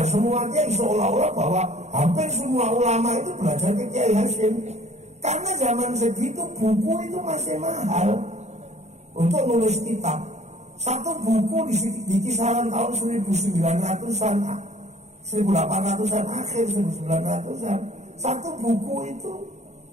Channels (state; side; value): late; left; 0.32 ms